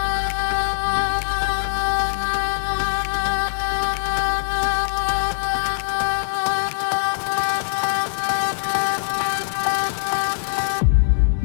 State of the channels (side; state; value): right; silent; digital silence